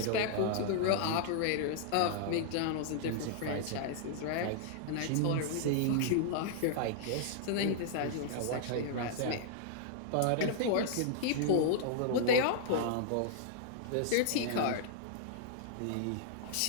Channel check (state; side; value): different; both; correlation -0.01